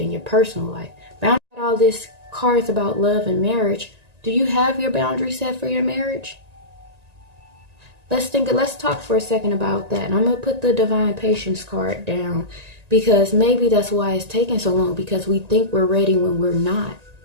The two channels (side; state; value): left; late; 1.9 ms